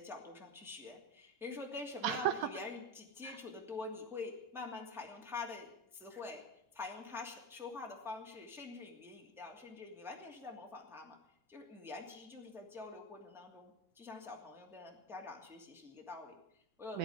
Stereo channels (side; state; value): both; normal; correlation 0.17